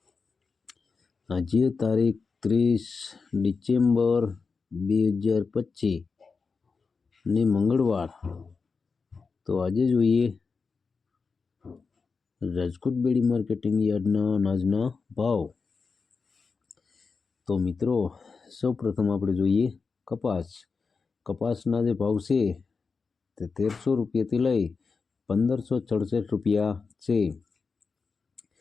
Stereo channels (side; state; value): right; quieter; 4.8 dB